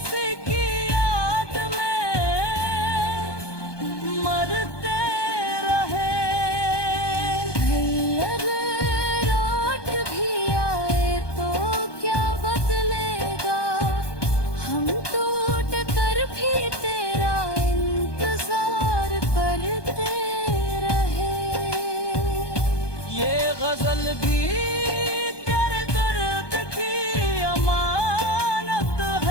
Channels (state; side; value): late; right; 1.2 ms